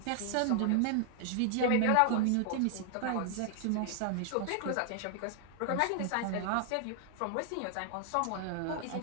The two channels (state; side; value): different; both; correlation 0.00